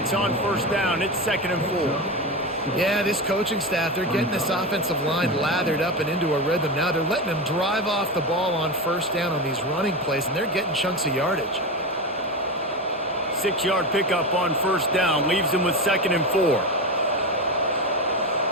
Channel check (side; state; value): both; normal; correlation 0.20